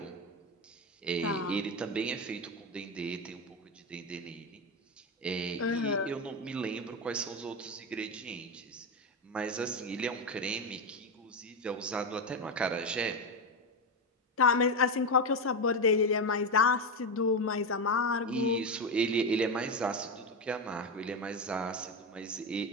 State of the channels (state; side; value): normal; both; correlation 0.13